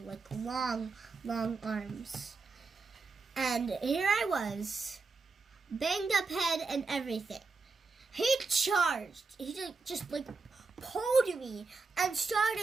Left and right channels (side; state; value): left; quieter; 4.2 dB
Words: long, long arms. And here I was, banged up head and everything. He charged. He just pulled me and